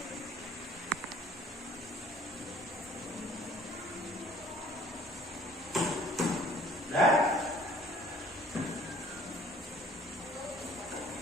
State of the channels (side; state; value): both; normal; correlation 0.54